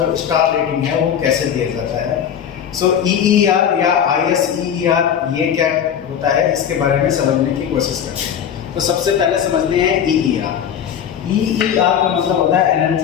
स्टार रेटिंग है वो कैसे दिया जाता है। सो EER या ISEER ये क्या होता है, इसके बारे में समझने की कोशिश करते हैं। तो सबसे पहले समझते हैं EER। EER का मतलब होता है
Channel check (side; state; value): right; quieter; 8.7 dB